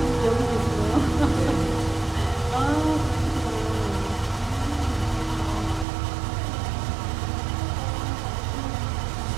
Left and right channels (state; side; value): drops out; left; at 5.9 s